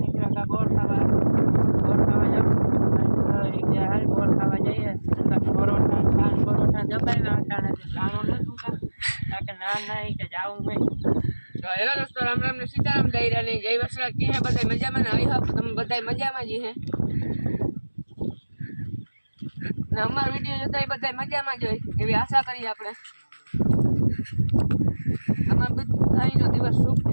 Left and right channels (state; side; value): inverted; both; correlation -1.00